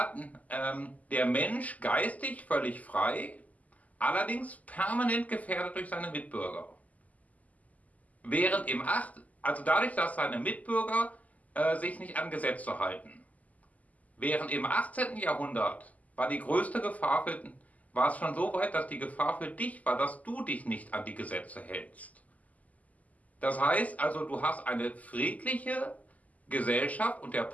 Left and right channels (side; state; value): right; late; 0.075 ms